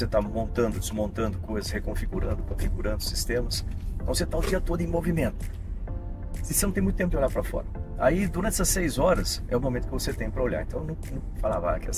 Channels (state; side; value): identical; both; correlation 1.00